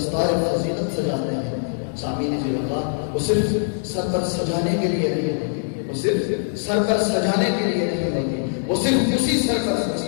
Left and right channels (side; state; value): right; silent; digital silence